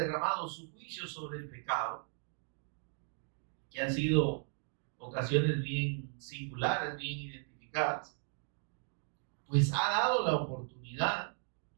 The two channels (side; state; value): left; silent; 53 dB below the other